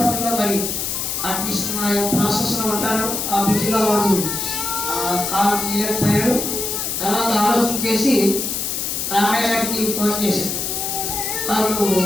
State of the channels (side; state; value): left; noise; hiss, 2 dB below the sound